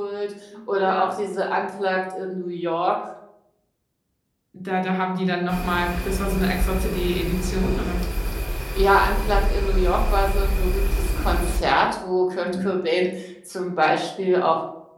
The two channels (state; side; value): identical; both; correlation 1.00